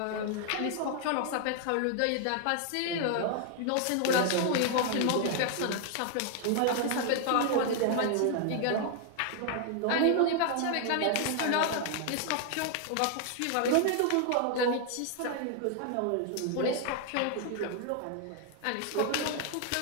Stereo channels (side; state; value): both; different; correlation 0.00